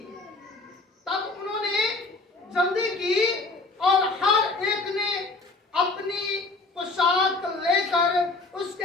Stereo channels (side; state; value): right; quieter; 3.4 dB